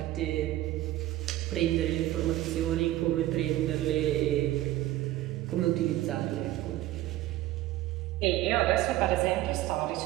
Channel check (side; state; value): left; quieter; 15.4 dB